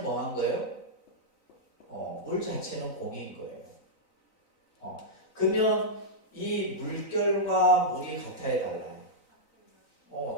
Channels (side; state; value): right; late; 4.0 ms